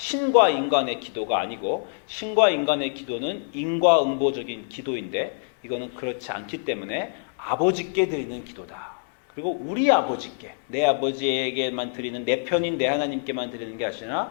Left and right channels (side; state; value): right; silent; 62 dB below the other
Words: 인간의 기도가 아니고, 신과 인간의 기도는 인과응보적인 기도인데, 이거는 그렇지 않기 때문에 아버지께 드리는 기도다. 그리고 우리 아버지께, 내 아버지에게만 드리는, 내 편인 내 하나님께만 드리는 게 아니라